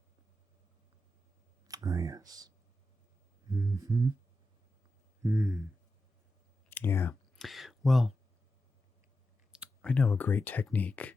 Ah, yes. Yeah. Well, I know a great technique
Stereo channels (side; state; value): both; normal; correlation 0.90